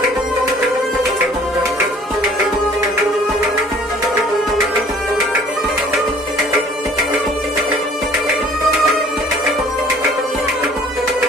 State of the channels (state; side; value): normal; both; correlation 0.53